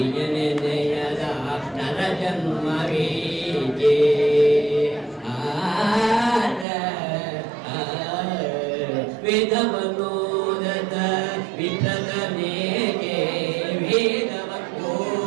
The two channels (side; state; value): left; drops out; at 6.7 s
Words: ನೆನೆಯದ ನರ ಜನ್ಮವೀಗೆ ವೇದವನೋದದ ವಿಪ್ರತನೇಗೆ